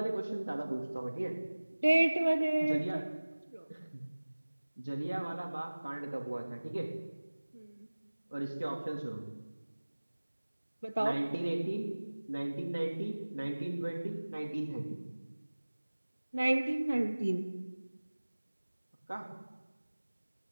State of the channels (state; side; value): inverted; both; correlation -1.00